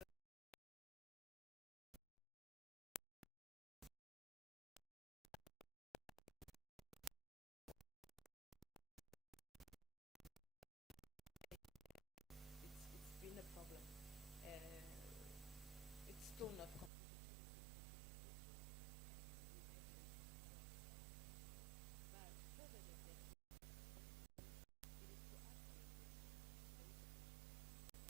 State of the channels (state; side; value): drops out; left; at 16.9 s